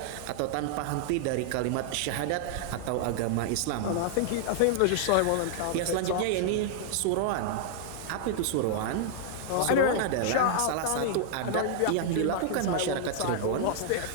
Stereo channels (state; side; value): different; both; correlation -0.01